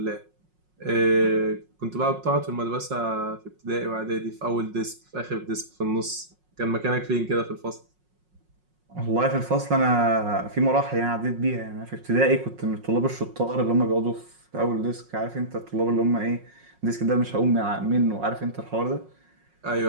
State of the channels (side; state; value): left; late; 5.5 ms